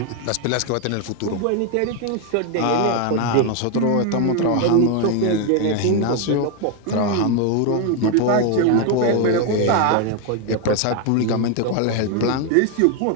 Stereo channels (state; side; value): different; both; correlation 0.01